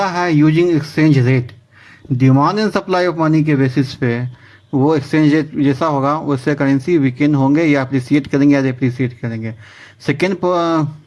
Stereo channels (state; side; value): identical; both; correlation 1.00